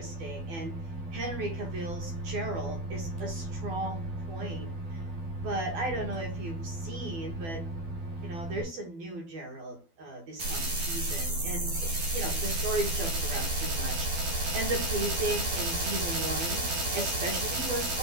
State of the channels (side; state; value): left; late; 12 ms